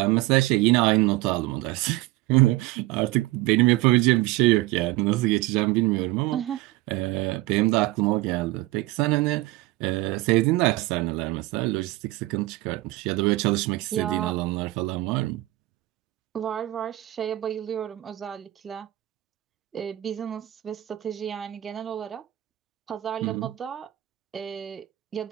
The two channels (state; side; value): quieter; left; 17.7 dB